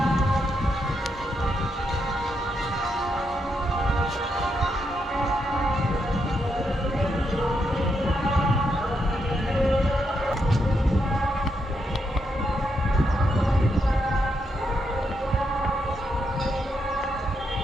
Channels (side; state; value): both; normal; correlation 0.81